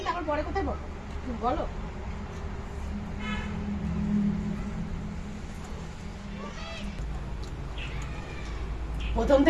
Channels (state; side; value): identical; both; correlation 1.00